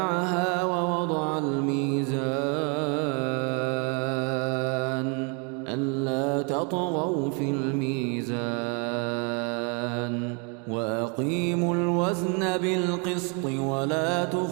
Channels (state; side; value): quieter; left; 35.6 dB